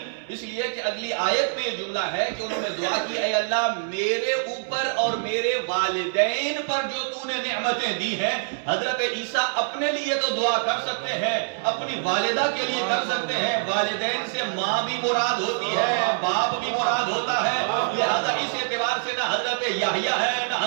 اس لیے کہ اگلی آیت میں یہ جملہ ہے کہ انہوں نے دعا کی اے اللہ میرے اوپر اور میرے والدین پر جو تو نے نعمتیں دی ہیں. حضرت عیسیٰ اپنے لیے تو دعا کر سکتے ہیں، اپنی والدہ کے لیے کر سکتے ہیں، والدین سے ماں بھی مراد ہوتی ہے، باپ بھی مراد ہوتا ہے، لہذا اس اعتبار سے نہ حضرت یحییٰ ہے نہ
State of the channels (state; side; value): silent; left; 62 dB below the other